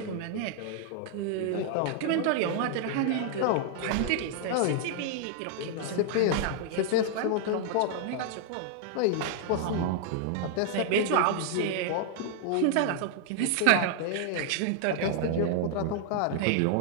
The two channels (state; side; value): different; both; correlation 0.00